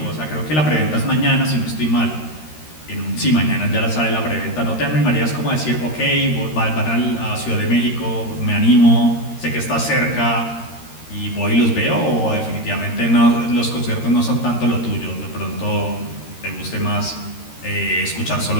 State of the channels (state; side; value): late; right; 13 ms